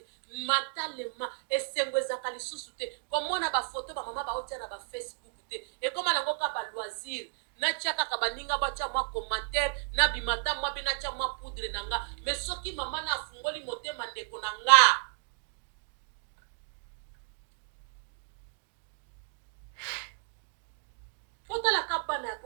mentalement esengwezaka lisusu te komona ba photo ba mama ba otia na ba Facebook te e koma nango ka ba loisir na tiaka ka baninga ba tia mwa commentaire na bimata mwa bina tia mwa poudre nanga mais soki mama na afungoli motema ndeko nanga otala ka bana ya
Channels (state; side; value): silent; left; digital silence